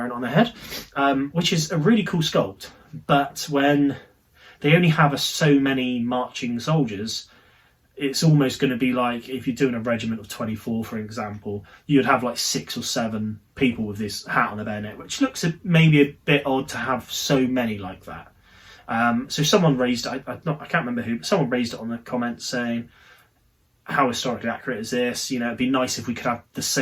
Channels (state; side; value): identical; both; correlation 1.00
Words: it on their head, which is a really cool sculpt. But when they only have so many marching soldiers, it's almost going to be like if you're doing a regiment of 24, for example, you'd have like 6 or 7 people with this hat on the bayonet, which looks maybe a bit odd to have so many like that. So someone raised, I can't remember who, but someone raised it on the comments saying, how historically accurate is this? You know, it'd be nice if we could have the